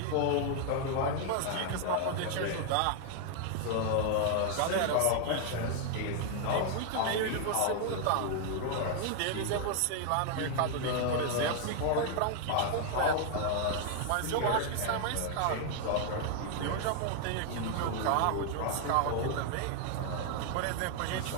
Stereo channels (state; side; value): different; both; correlation 0.00